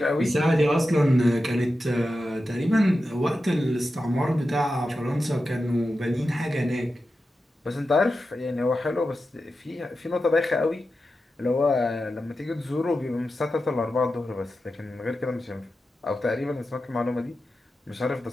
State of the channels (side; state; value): both; normal; correlation 0.91